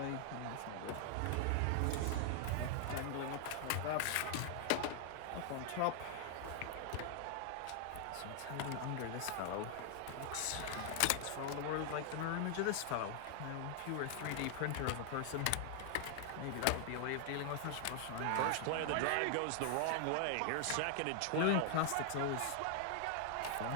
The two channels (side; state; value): both; different; correlation 0.00